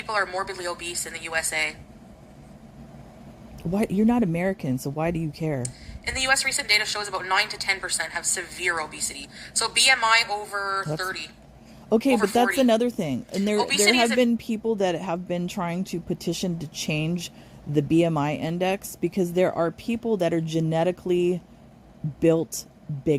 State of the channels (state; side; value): identical; both; correlation 1.00